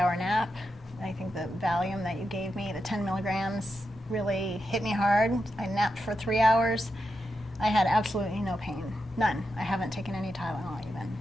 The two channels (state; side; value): normal; both; correlation 0.87